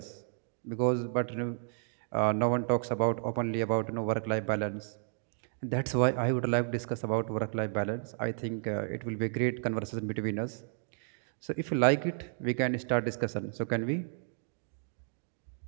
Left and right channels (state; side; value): silent; left; 56 dB below the other